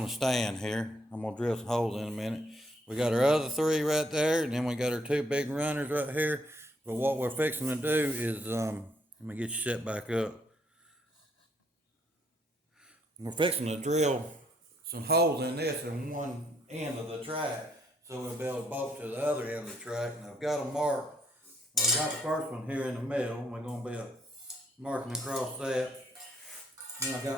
the stand here. I'm going to drill some holes in a minute. We got our other three right there, and then we got our two big runners right here. But what we're fixing to do is, let me get you set back up. We're fixing to drill some holes in this in one end of the track, so we'll be able to bolt to the other end of the track. And I've got them marked. Well, I got the first one here in the middle. We're going to be marking across that. Then I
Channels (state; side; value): normal; both; correlation 0.71